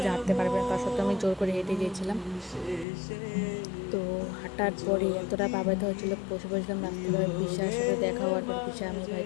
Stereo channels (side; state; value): right; drops out; at 2.9 s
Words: যে হাঁটতে পারবে না, তার সত্ত্বেও আমি জোর করে হেঁটে গিয়েছিলাম। তো হাঁটার পরে এতটা পাবাইতে হয়েছিল, বসে বসেছিলাম রাস্তায়। পিসার সাথে দেখা হওয়ার পর পিসা আমি ভাই